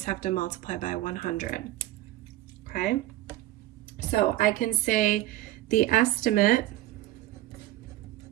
have to multiply by 100. Okay? So I can say the estimate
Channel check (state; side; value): quieter; left; 15.3 dB